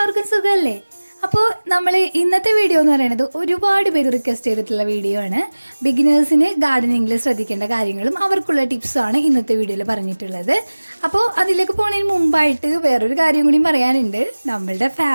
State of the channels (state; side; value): inverted; both; correlation -1.00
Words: എല്ലാവർക്കും സുഖമല്ലേ? അപ്പോൾ നമ്മൾ ഇന്നത്തെ വീഡിയോ എന്ന് പറയുന്നത് ഒരുപാട് പേര് റിക്വസ്റ്റ് ചെയ്തിട്ടുള്ള വീഡിയോ ആണ്. ബിഗിനേഴ്സിന് ഗാർഡനിങ്ങിൽ ശ്രദ്ധിക്കേണ്ട കാര്യങ്ങളും അവർക്കുള്ള ടിപ്സാണ് ഇന്നത്തെ വീഡിയോയിൽ പറഞ്ഞിട്ടുള്ളത്. അപ്പോൾ അതിലേക്ക് പോകുന്നതിന് മുമ്പായിട്ട് വേറൊരു കാര്യം കൂടി പറയാനുണ്ട്. നമ്മളുടെ